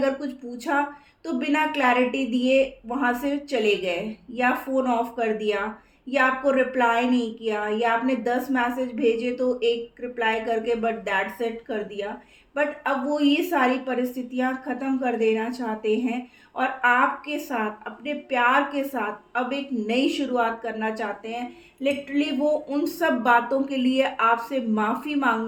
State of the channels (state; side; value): identical; both; correlation 1.00